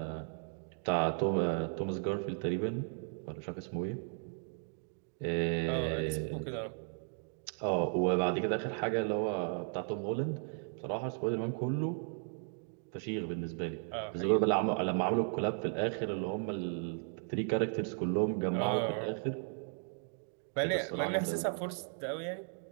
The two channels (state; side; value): silent; left; 54 dB below the other